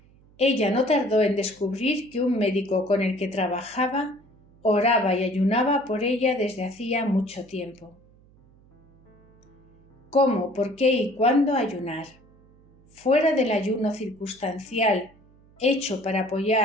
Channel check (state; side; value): noise; right; hum, 29 dB below the sound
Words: Ella no tardó en descubrir que un médico con el que trabajaba oraba y ayunaba por ella desde hacía mucho tiempo. ¿Cómo, por qué y cuándo ayunar? Fuera del ayuno circunstancial, hecho para